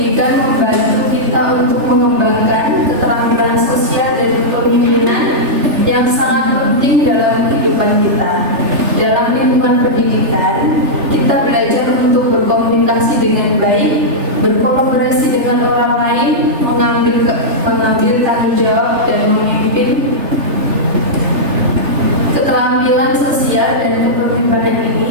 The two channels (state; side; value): late; left; 3.3 ms